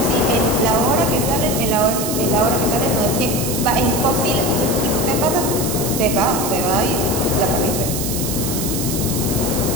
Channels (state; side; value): noise; right; hiss, 4 dB below the sound